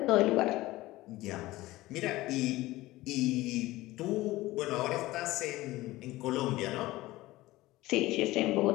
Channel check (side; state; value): right; quieter; 18.1 dB